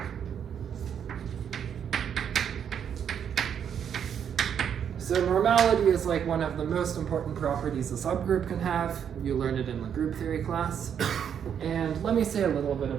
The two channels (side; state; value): left; quieter; 8.3 dB